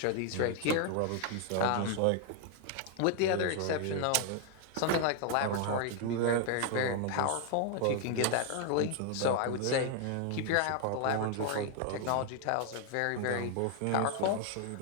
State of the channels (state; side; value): different; both; correlation 0.00